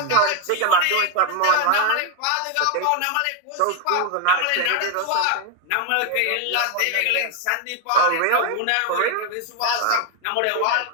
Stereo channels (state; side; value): different; both; correlation 0.01